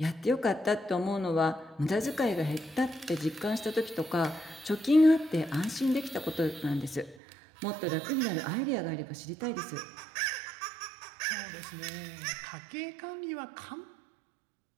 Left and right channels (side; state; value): left; drops out; at 7.2 s